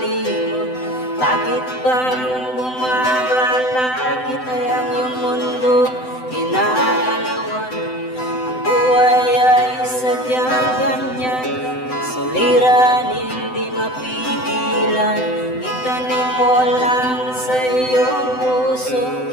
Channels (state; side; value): late; right; 7.9 ms